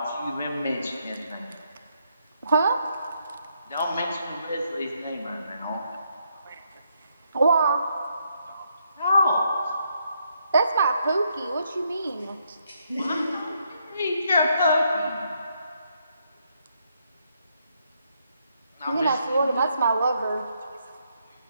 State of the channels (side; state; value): both; inverted; correlation -0.75